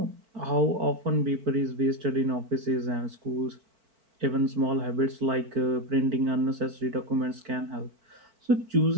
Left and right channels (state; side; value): late; left; 4.5 ms